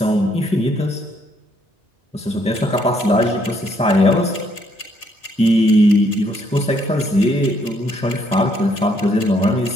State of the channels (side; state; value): both; normal; correlation 0.70